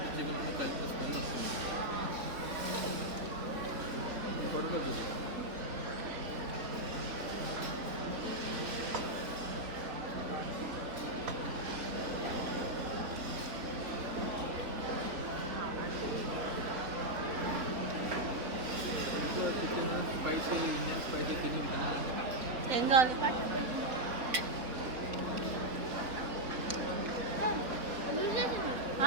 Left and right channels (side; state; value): left; late; 3.7 ms